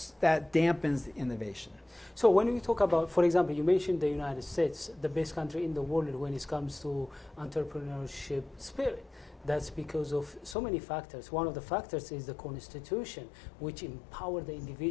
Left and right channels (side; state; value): right; drops out; at 10.6 s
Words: the innovation. So when we talk about, for example, you mentioned the United States, the best country in the world when it comes to entrepreneurship spirit. That's because of so many factors. One of the factors is the Constitution, which empower the